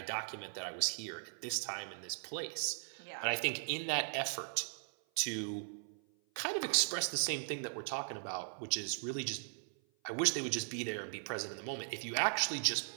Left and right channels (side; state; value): left; silent; 52 dB below the other